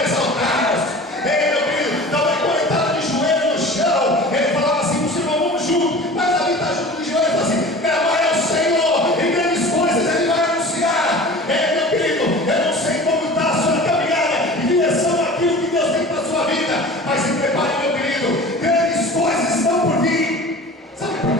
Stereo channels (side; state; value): both; normal; correlation 0.39